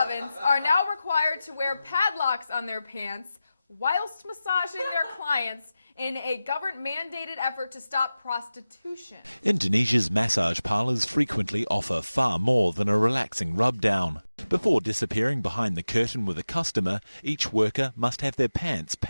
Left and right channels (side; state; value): both; inverted; correlation -0.95